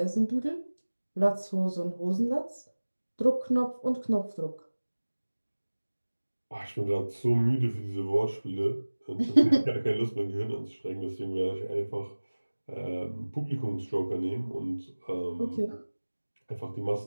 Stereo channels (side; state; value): both; inverted; correlation -1.00